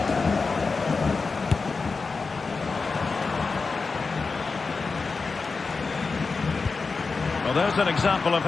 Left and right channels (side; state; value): right; quieter; 4.4 dB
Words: Well, there's an example of